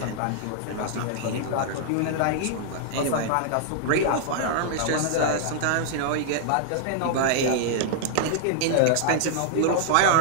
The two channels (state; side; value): different; both; correlation -0.01